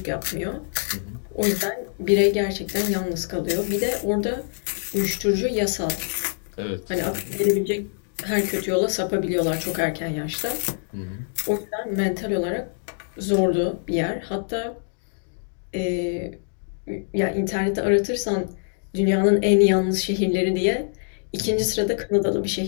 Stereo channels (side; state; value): right; silent; digital silence